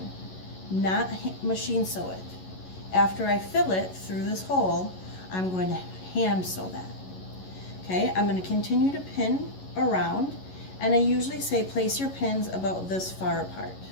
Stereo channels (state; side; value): late; right; 11 ms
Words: not machine sew it. After I fill it through this hole, I'm going to hand sew that. Okay, I'm going to continue to pin around, and I usually say place your pins about this far apart.